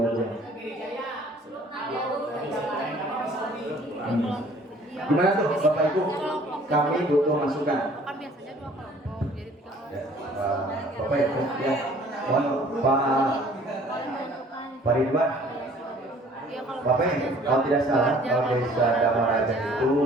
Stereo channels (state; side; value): normal; both; correlation 0.54